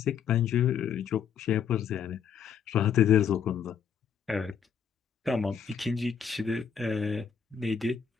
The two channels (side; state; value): right; quieter; 7.3 dB